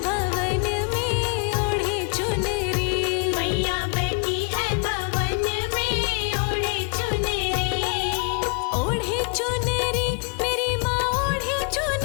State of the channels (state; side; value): quieter; right; 36.6 dB